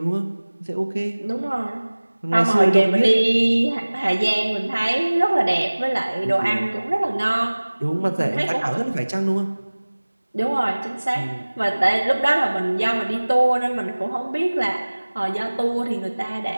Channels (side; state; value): both; inverted; correlation -1.00